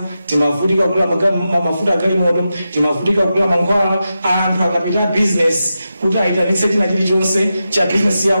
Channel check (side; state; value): both; inverted; correlation -0.90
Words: timavutika kugula mafuta agalimoto, timavutika kugula mankhwala. Anthu akapita business kuti aitanitse china chilichonse cha business